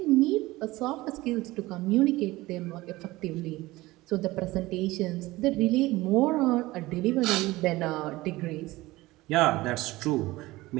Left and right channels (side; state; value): left; quieter; 19.2 dB